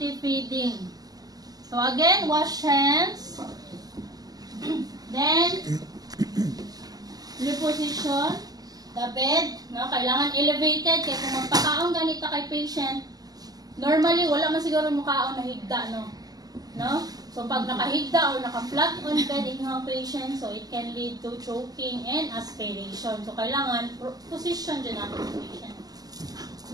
feeding. So, again, wash hands. Then, reposition the bed. No? Kailangan elevated. Kaya kung magpakaon ganito kay patient, normally, wala man siguro mukhaon na higda, no? No? So, pag nakahigda or naka-flat on bed yung patient, so it can lead to choking and aspiration. So, kailangan position dyan natin yung patient.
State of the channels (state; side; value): late; left; 0.18 ms